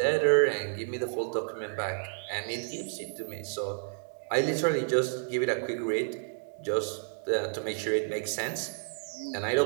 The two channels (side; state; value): left; silent; digital silence